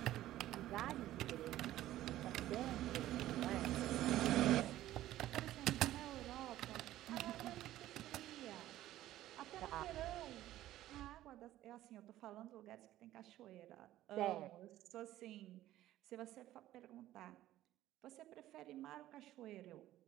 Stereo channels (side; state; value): left; quieter; 14.2 dB